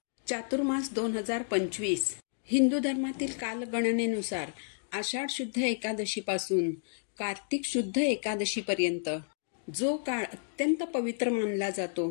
चातुर्मास 2025 हिंदू धर्मातील कालगणनेनुसार आषाढ शुद्ध एकादशीपासून कार्तिक शुद्ध एकादशीपर्यंत जो काळ अत्यंत पवित्र मानला जातो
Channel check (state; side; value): silent; right; digital silence